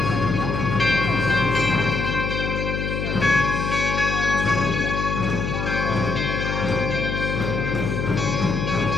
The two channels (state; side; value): noise; left; hum, 2 dB below the sound